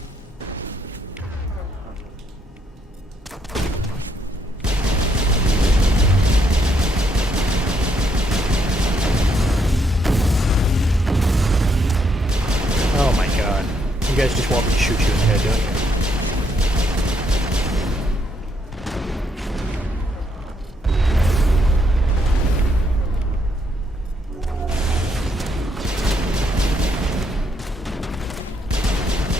Oh my god. You guys just want me to shoot you in the head, don't you?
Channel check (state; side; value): normal; both; correlation 0.74